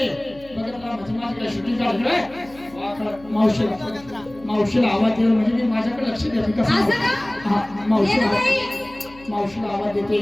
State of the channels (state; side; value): noise; left; hum, 23 dB below the sound